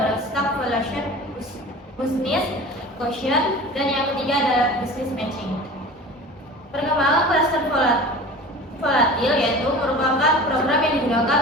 innovation, dan yang ketiga adalah business matching. Perkembangan cluster volatil yaitu merupakan program yang digunakan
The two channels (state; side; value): normal; both; correlation 0.38